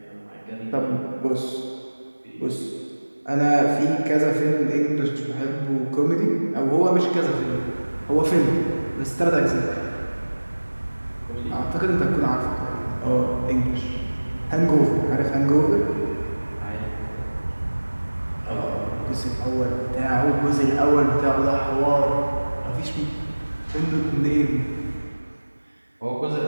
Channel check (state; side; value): inverted; both; correlation -1.00